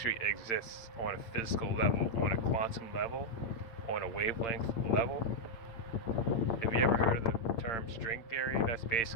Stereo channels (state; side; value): late; right; 8.7 ms